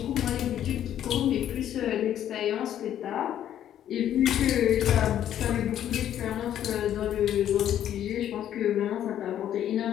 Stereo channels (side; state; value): right; quieter; 10.9 dB